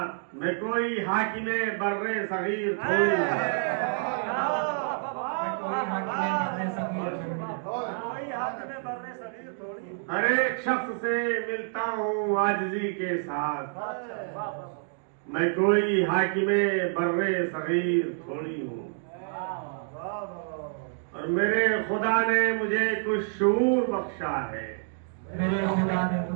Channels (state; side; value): silent; left; digital silence